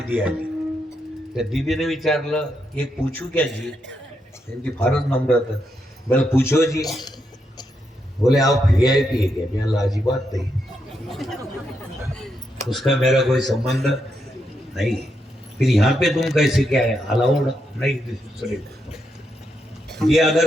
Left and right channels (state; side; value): normal; both; correlation 0.81